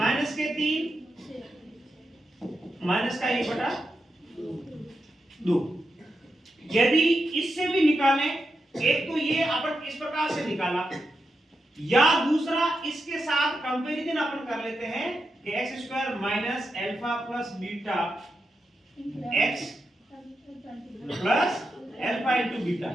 माइनस का 1/2। यदि इससे भी निकालें, एक तो ये अपन इस प्रकार से निकाला, या दूसरा इसके साथ कंपैरिजन अपन कर लेते हैं कि x² minus alpha plus beta x plus alpha into beta.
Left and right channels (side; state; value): both; normal; correlation 0.87